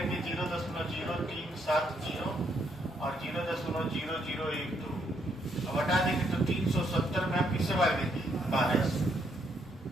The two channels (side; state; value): both; normal; correlation 0.74